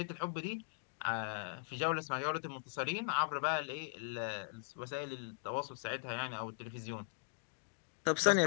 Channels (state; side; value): silent; right; digital silence